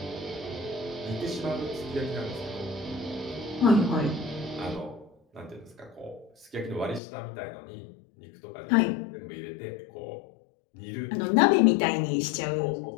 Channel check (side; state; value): right; drops out; at 7.0 s